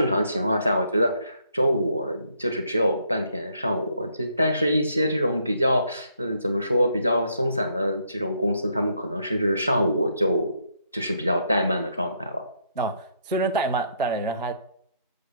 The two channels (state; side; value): inverted; both; correlation -0.72